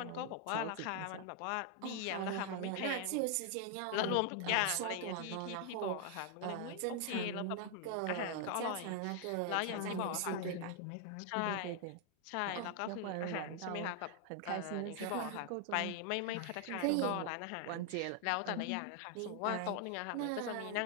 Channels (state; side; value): different; both; correlation 0.00